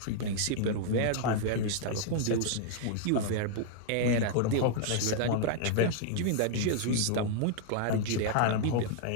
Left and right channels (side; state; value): both; different; correlation -0.01